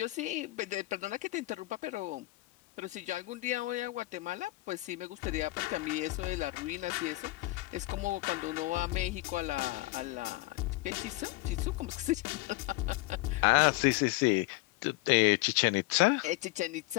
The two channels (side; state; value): right; quieter; 20.4 dB